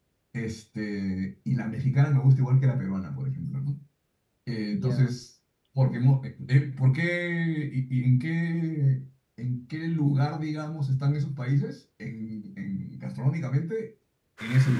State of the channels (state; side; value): identical; both; correlation 1.00